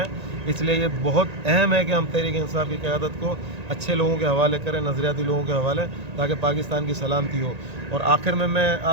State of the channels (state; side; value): late; left; 1.9 ms